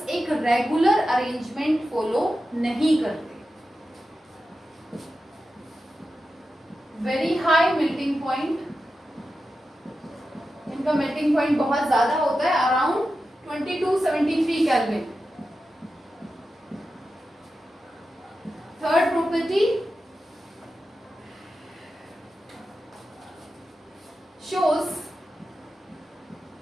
एक रेगुलर अरेंजमेंट फॉलो नहीं करते। वेरी हाई मेल्टिंग पॉइंट, इनका मेल्टिंग पॉइंट बहुत ज्यादा होता है, अराउंड 2273 kelvin. Third property, shows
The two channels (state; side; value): normal; both; correlation 0.91